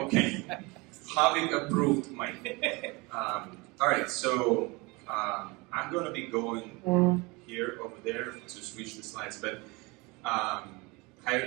Having approved mic. All right, so I'm going to be going here, over there, to switch the slides. But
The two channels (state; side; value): quieter; left; 25.9 dB